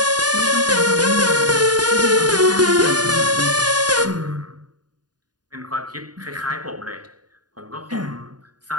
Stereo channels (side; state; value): left; late; 0.69 ms